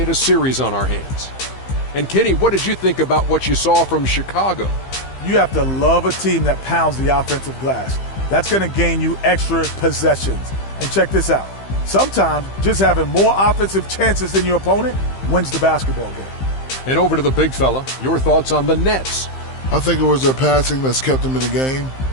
a series on our hands. And Kenny, what did you think about what you saw from Chicago? You have to love a team that pounds the offensive glass. That's going to gain you extra possessions. And check this out. Sometimes just having more offensive chances than your opponent wins the basketball game. And over to the big fella, your thoughts on the Nets? I think it was their passing that's kept them in the game.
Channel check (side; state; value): right; late; 15 ms